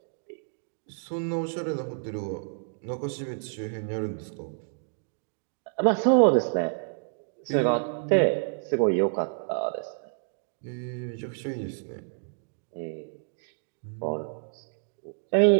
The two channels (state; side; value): silent; left; digital silence